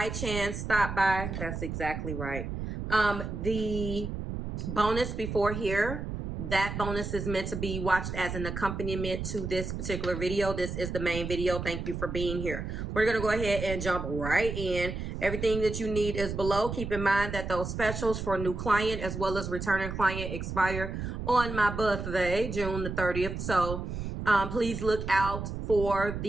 chance stop by, that's exactly right. The bonus before here, that bonus is meant to be watched as an accompaniment to this particular video. This is the main video. Thank you for being here. We're going to go ahead and jump right in. Everything that you need is below. Keep in mind that those specials for new client as well as returning client expire on my birthday, June the 30th. So please look out for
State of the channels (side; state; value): right; noise; rumble, 5 dB below the sound